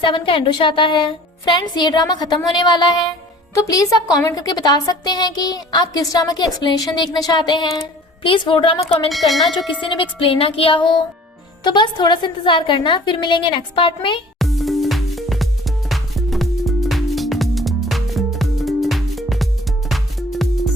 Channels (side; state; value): both; normal; correlation 0.48